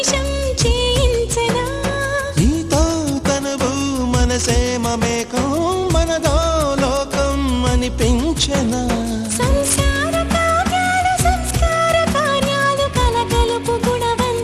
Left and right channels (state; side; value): identical; both; correlation 1.00